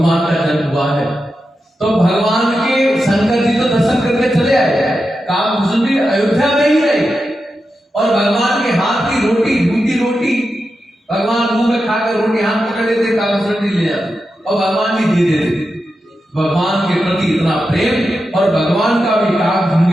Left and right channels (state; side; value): normal; both; correlation 0.89